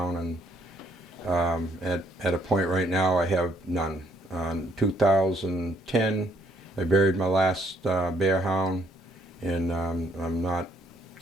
and at a point right now I have none. In 2010 I buried my last bear hound, and I'm not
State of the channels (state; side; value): normal; both; correlation 0.68